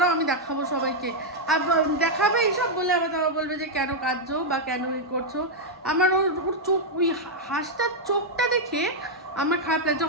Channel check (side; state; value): both; normal; correlation -0.02